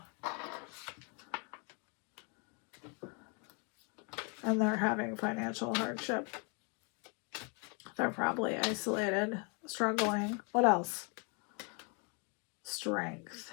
And they're having financial hardship. They're probably isolated, struggling. What else? Strength.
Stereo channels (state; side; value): quieter; right; 35.2 dB